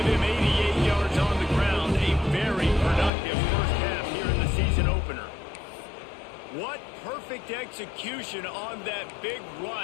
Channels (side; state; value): right; drops out; at 3.1 s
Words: him 88 yards on the ground. A very productive first half here in the season opener. What perfect execution on that big